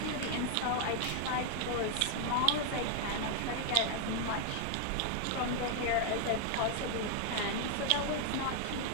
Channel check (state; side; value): different; both; correlation 0.00